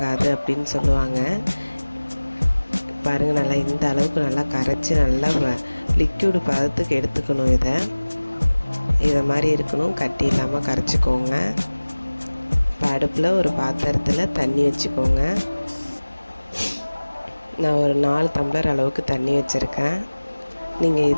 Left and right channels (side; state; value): both; inverted; correlation -1.00